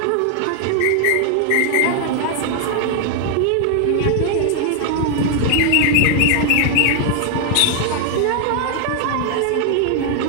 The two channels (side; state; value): both; different; correlation 0.00